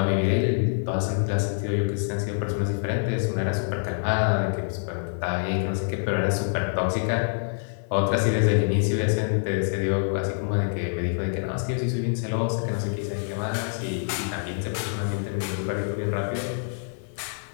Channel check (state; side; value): silent; right; 57 dB below the other